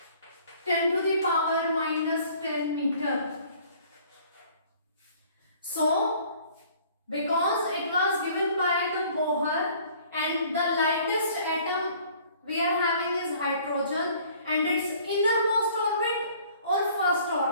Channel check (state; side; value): inverted; both; correlation -0.55